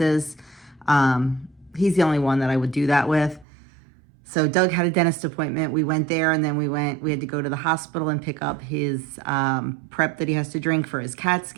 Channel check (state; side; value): drops out; left; at 3.5 s